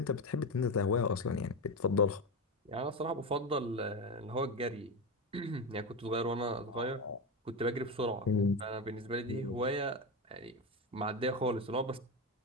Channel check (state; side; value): normal; both; correlation 0.15